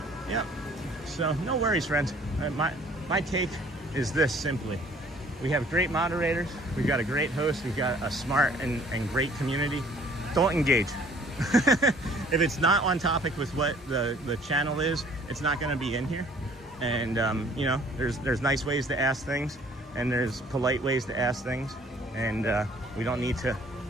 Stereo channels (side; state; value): both; normal; correlation 0.56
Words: Yep. So no worries, friends. My take is this simply. We have great moderators. We've got a great host. We've got a smart and great community. Don't engage. If it's not on topic with what the channel is, it's not going to be in here. And you know, there's nice ways to ask things, and there's polite ways to ask things, and we don't need